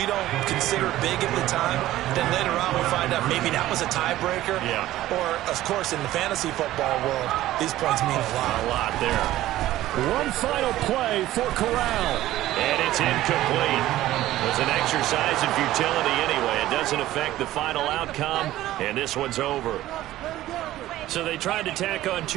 don't consider big at the time. Then later on we find out maybe that was a tiebreaker. Yeah. Or, of course, in the fantasy football world, these points mean a lot. A lot there. One final play for Corral. And it's incomplete. It was an exercise in futility anyway. It doesn't affect the final outcome, and this one's over. So they tried to tack on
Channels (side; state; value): left; quieter; 14.9 dB